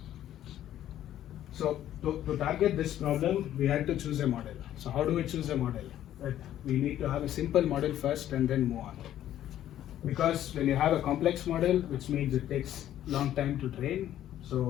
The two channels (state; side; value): quieter; right; 12.0 dB